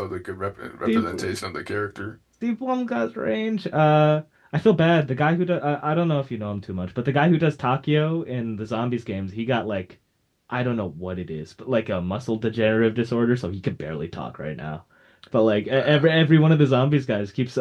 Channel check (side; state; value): both; identical; correlation 1.00